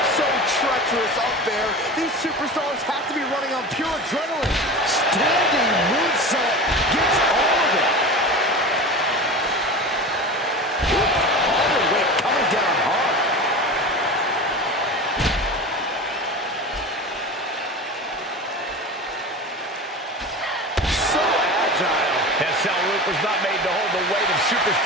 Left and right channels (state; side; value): normal; both; correlation 0.30